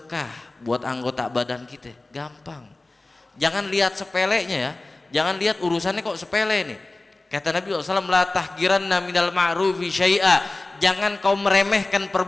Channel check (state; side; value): quieter; right; 3.0 dB